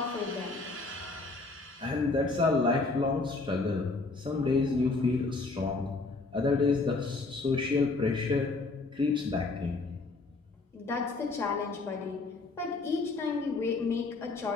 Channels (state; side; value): quieter; right; 3.6 dB